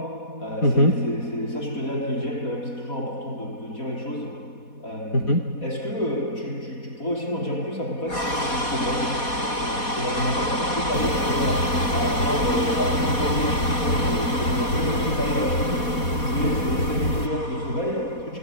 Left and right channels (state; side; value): late; right; 4.2 ms